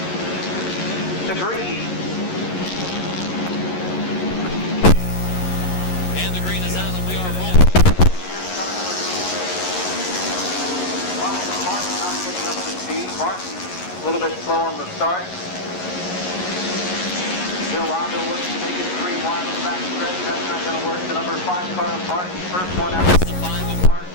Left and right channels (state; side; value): late; right; 11 ms